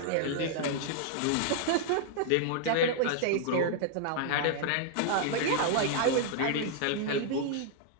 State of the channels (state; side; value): different; both; correlation -0.01